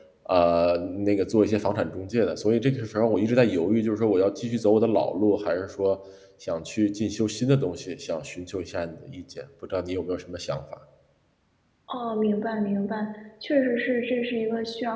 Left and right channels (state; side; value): identical; both; correlation 1.00